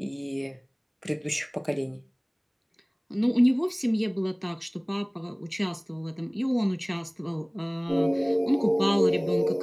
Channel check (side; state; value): both; identical; correlation 1.00